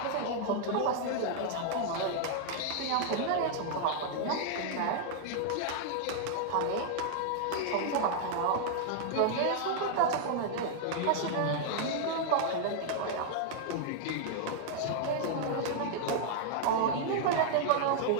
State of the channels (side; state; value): both; different; correlation -0.01